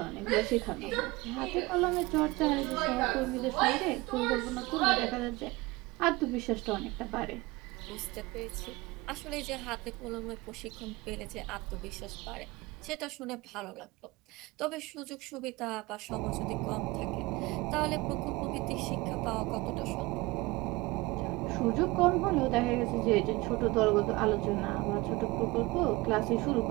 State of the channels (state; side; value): quieter; left; 22.1 dB